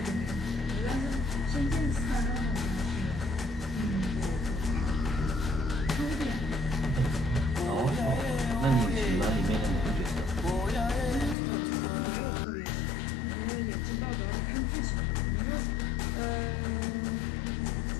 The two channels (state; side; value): drops out; right; at 11.4 s